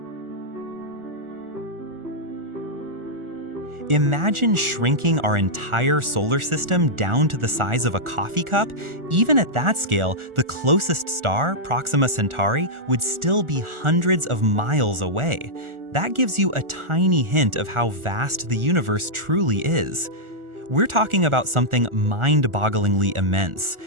Imagine shrinking our entire solar system down to the size of a coffee cup. Even at that scale, the closest star, Proxima Centauri, would still be hundreds of miles away. That gives you a tiny hint of how vast the universe truly is. We're talking about something mind-bogglingly immense.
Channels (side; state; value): left; late; 1.4 ms